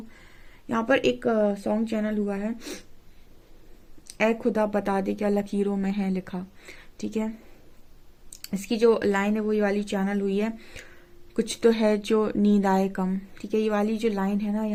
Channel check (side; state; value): both; identical; correlation 1.00